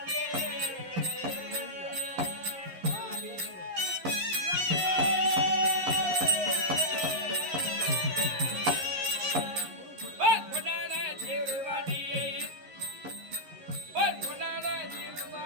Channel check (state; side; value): late; left; 11 ms